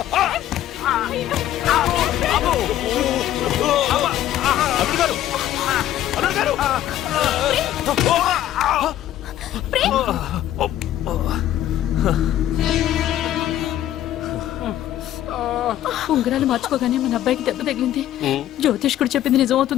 అల్లుడు గారు! అల్లుడు గారు! ఉంగరాలు మార్చుకోగానే మన అబ్బాయికి దెబ్బ తగిలింది. జ్యోతిష్కుడు చెప్పింది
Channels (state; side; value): quieter; right; 12.5 dB